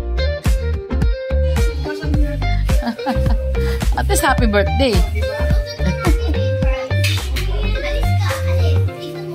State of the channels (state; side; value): identical; both; correlation 1.00